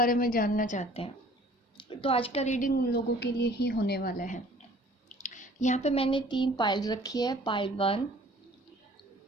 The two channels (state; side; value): normal; both; correlation 0.52